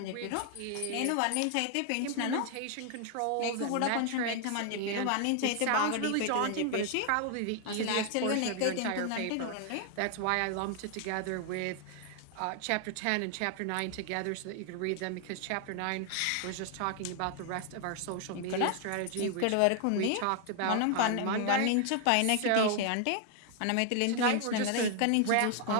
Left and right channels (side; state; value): both; different; correlation 0.00